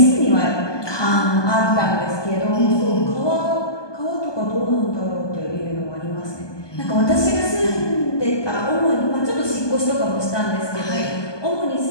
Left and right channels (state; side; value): late; right; 1.2 ms